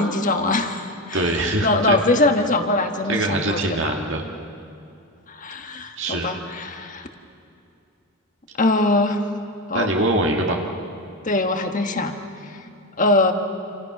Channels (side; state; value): both; normal; correlation 0.16